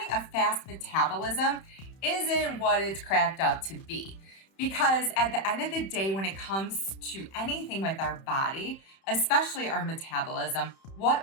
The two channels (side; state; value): right; late; 31 ms